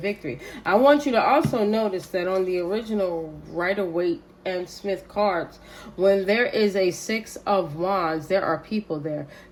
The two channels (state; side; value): identical; both; correlation 1.00